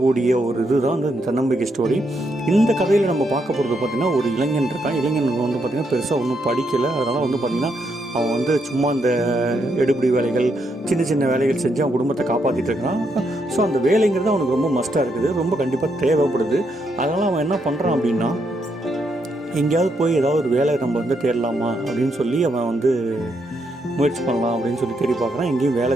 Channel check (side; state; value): both; normal; correlation 0.78